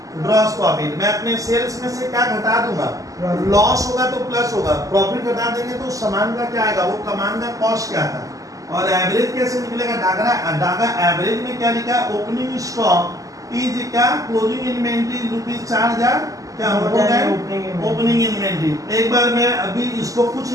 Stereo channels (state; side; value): late; left; 0.17 ms